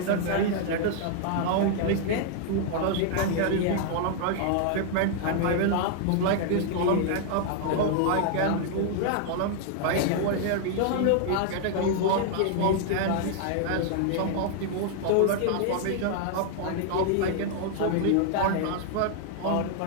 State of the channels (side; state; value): both; different; correlation -0.01